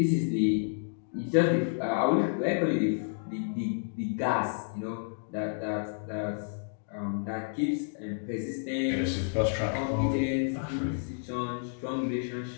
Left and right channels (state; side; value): silent; right; digital silence